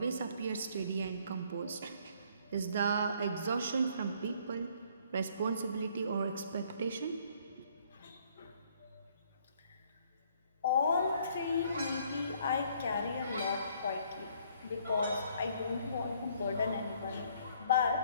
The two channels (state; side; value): inverted; both; correlation -0.63